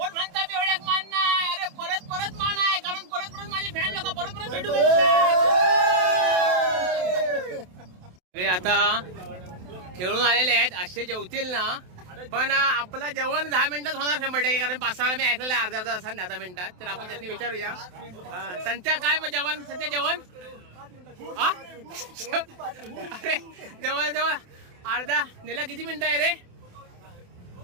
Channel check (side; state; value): left; late; 28 ms